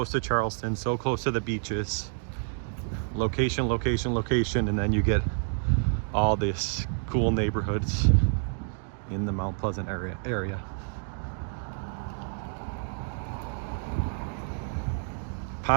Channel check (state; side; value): silent; left; 59 dB below the other